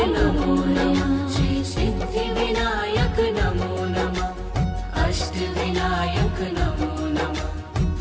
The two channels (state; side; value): identical; both; correlation 1.00